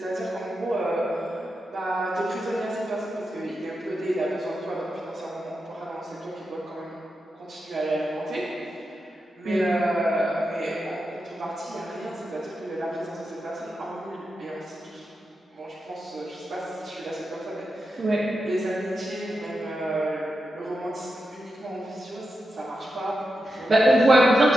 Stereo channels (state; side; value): normal; both; correlation 0.88